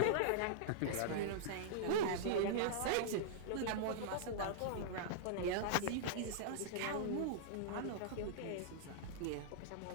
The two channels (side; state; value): both; different; correlation -0.02